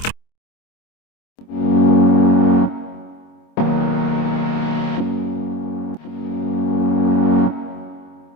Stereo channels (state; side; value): late; right; 25 ms